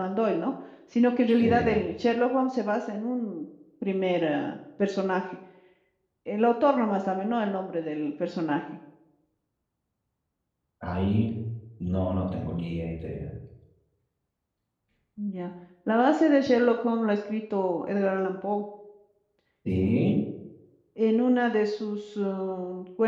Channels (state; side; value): identical; both; correlation 1.00